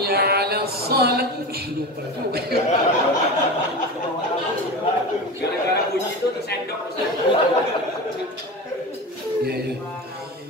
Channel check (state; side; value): normal; both; correlation 0.27